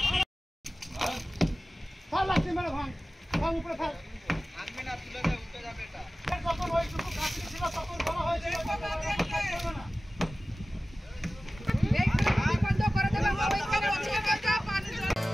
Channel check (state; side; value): normal; both; correlation 0.96